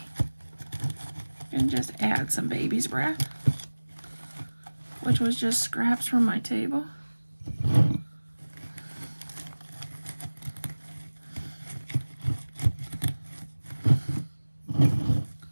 And just add some baby's breath, which was just scraps from my table.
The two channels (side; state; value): both; inverted; correlation -1.00